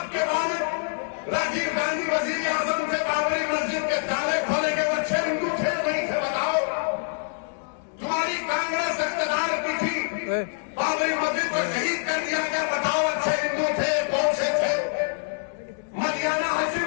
کے والد راجیو گاندھی وزیر اعظم تھے، بابری مسجد کے تالے کھولے کے وہ اچھے ہندو تھے نہیں تھے؟ بتاؤ۔ تمہاری کانگریس اقتدار کی تھی، بابری مسجد کو شہید کر دیا گیا، بتاؤ اچھے ہندو تھے کون سے تھے؟ مدینہ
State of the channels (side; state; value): right; silent; digital silence